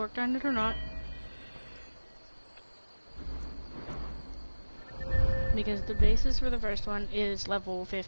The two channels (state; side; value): inverted; both; correlation -1.00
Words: on it or not. Because the basis for the first one is level